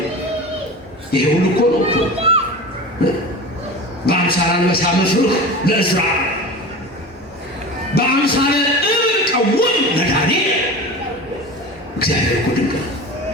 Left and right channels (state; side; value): normal; both; correlation 0.32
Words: ይሄ ሁሉ እኮ ነው እኮ በአምሳለ አንበሳ መፍርህ ለእዝራ፣ በአምሳለ እብን ቀውም ለዳንኤል። እግዚአብሔር እኮ ድንቅ ነው።